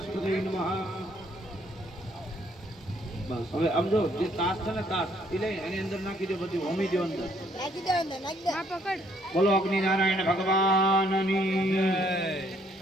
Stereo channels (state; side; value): normal; both; correlation 0.67